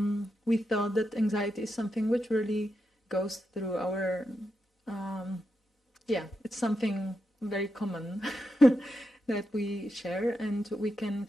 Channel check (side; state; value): both; normal; correlation 0.86